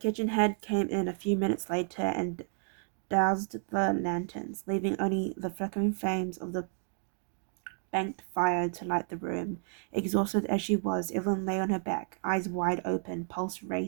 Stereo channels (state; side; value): silent; left; 57 dB below the other